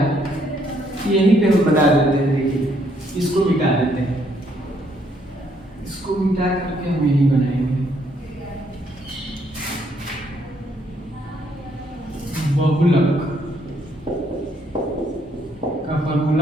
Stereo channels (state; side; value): normal; both; correlation 0.70